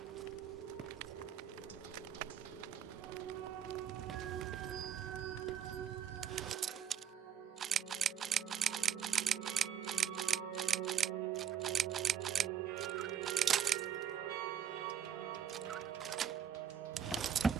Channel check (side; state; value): left; quieter; 8.8 dB